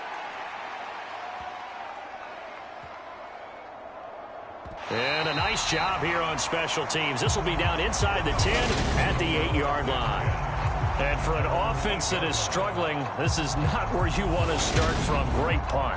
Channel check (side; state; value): both; identical; correlation 1.00